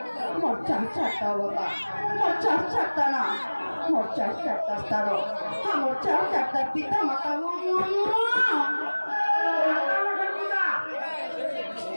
মোর চার চারটা অবতার মোর চার চারটা না মোর চার চারটা স্তার আমার চার চারটা পিতা মাতা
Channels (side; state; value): both; inverted; correlation -1.00